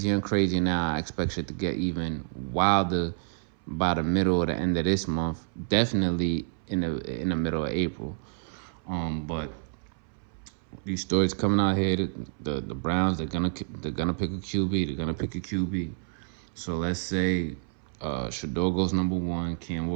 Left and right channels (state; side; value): silent; left; 59 dB below the other